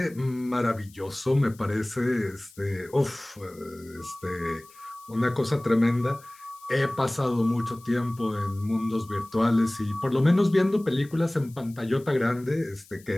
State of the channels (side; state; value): left; noise; hiss, 25 dB below the sound